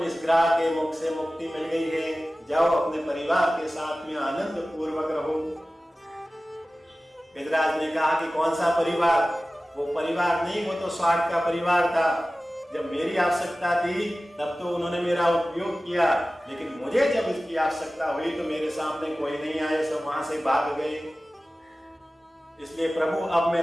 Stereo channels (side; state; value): both; normal; correlation 0.96